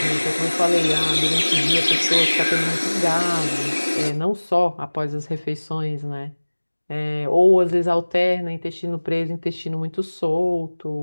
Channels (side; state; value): both; inverted; correlation -1.00